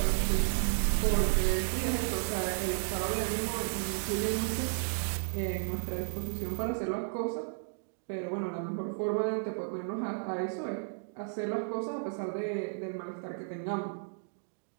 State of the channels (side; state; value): left; silent; digital silence